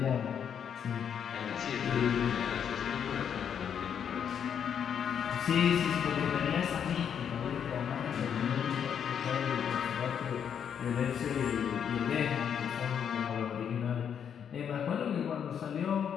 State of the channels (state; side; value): quieter; right; 8.1 dB